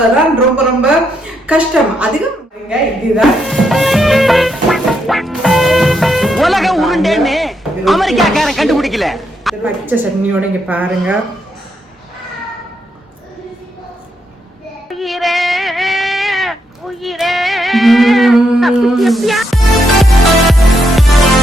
ரொம்ப ரொம்ப கஷ்டம். அதிகம் இதுதான் உலக உருண்டேன்னு அமெரிக்காக்காரன் கண்டுபிடிக்கல. பச்சை சட்னியோட இங்க பாருங்க.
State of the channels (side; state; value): both; normal; correlation 0.79